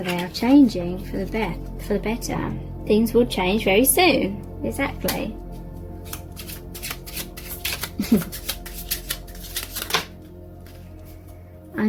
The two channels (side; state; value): both; identical; correlation 1.00